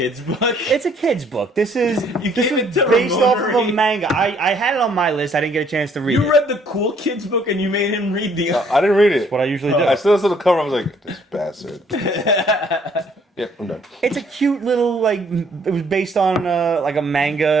book? It's a kid's book. This is based Ramon off of a read. manga. I had it on my list. I didn't get a chance to read it. You read the cool kids' book and you made him read the... I didn't read it. What I usually do. I still saw the cover. I was like, this bastard. Yep, I'm done. It's a cute little, like, it was based on like a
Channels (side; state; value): both; normal; correlation 0.63